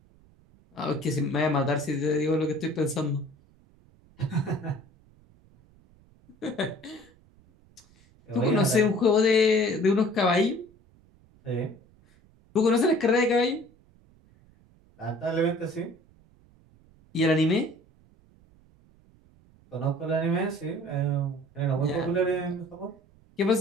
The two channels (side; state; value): right; noise; rumble, 29 dB below the sound